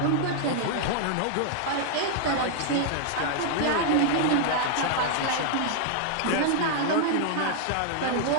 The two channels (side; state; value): both; different; correlation -0.01